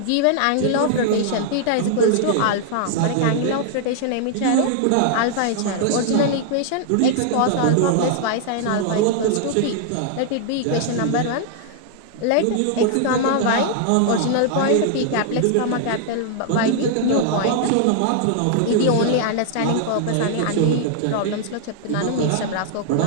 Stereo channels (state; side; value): different; both; correlation -0.01